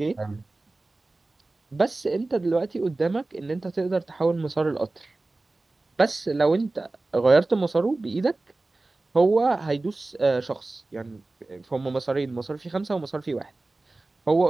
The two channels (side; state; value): left; quieter; 3.1 dB